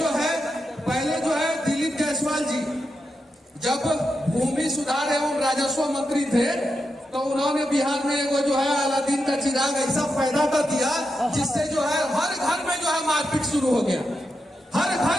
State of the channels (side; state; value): both; normal; correlation 0.87